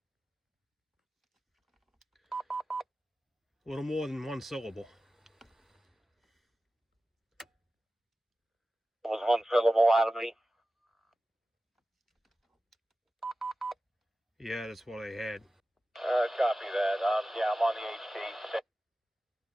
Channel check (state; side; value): normal; both; correlation 0.95